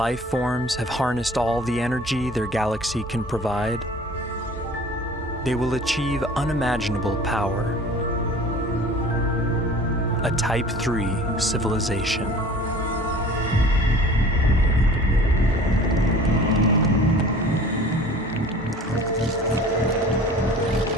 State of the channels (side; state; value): both; normal; correlation 0.45